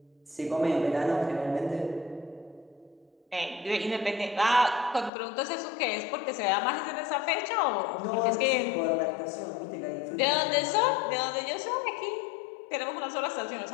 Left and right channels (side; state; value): right; drops out; at 5.1 s